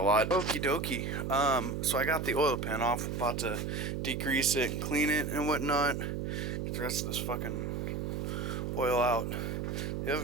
Okie dokie. So I got the oil pan off, I'm about to degrease it and clean it and whatnot. Get the rest of this fucking oil out. The other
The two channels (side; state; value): right; noise; hum, 3 dB below the sound